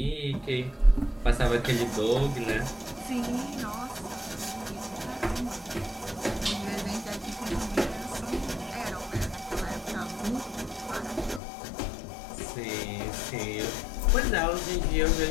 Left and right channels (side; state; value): right; drops out; at 11.4 s